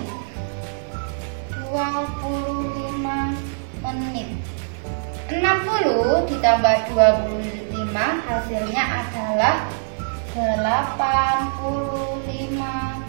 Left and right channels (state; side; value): silent; left; 63 dB below the other